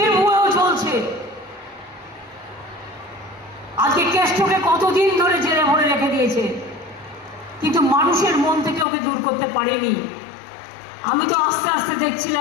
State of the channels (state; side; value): drops out; right; at 8.8 s